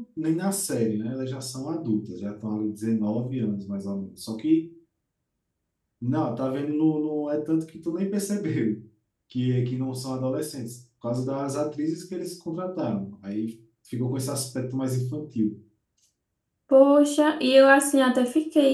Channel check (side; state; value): both; identical; correlation 1.00